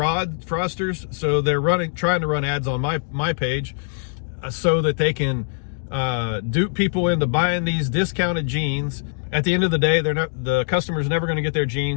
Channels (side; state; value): right; silent; digital silence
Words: So they're trying to run ads on my page so that they can dupe people into buying these discounted jeans. At the end of the day, the customer's never going to get their